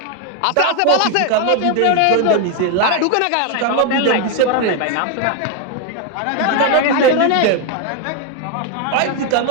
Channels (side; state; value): both; different; correlation 0.01